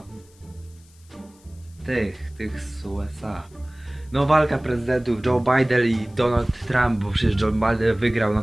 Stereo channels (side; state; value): left; noise; hiss, 29 dB below the sound